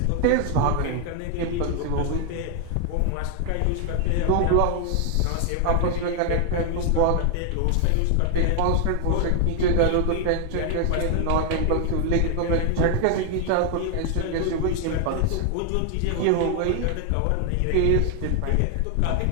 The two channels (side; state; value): both; different; correlation 0.00